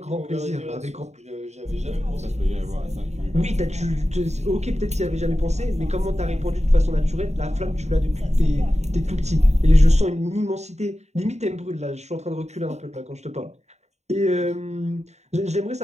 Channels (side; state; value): left; late; 0.32 ms